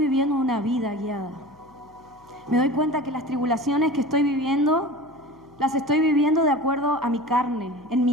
una vida guiada. Me doy cuenta que las tribulaciones que estoy viviendo, las estoy viviendo de acuerdo a mi carne, en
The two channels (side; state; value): left; noise; hum, 28 dB below the sound